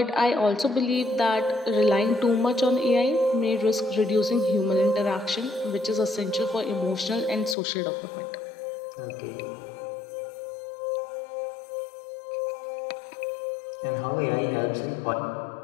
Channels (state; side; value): drops out; right; at 7.6 s